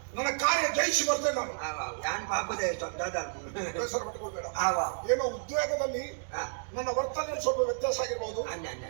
ನನ್ನ ಕಾರ್ಯ ಜಯಿಸಿ ಬರ್ತೇನೆ ನಾನು. ಆವ ನಾನು ಪಾಪದ ಬೇಸರ ಪಟ್ಕೋಬೇಡ. ಆವ ಏನೋ ಉದ್ವೇಗದಲ್ಲಿ ಹಾ ನನ್ನ ವರ್ತನೆಯಲ್ಲಿ ಸ್ವಲ್ಪ ವ್ಯತ್ಯಾಸ ಆಗಿರ್ಬೋದು. ಅನ್ನ ಅನ್ನ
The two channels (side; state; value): left; silent; digital silence